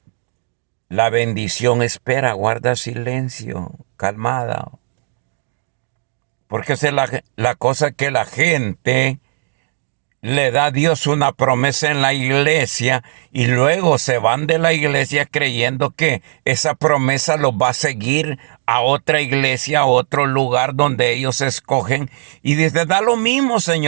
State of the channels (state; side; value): silent; left; digital silence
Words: la bendición, espera, guarda silencio, calmada. Porque esa es la cosa que la gente le da a Dios una promesa en la iglesia y luego se van de la iglesia creyendo que esa promesa los va a seguir a otra iglesia, a otro lugar donde ellos escogen. Y dice, da lo mismo,